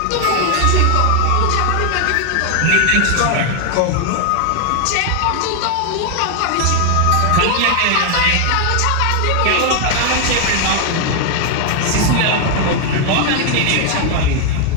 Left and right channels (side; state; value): both; different; correlation 0.00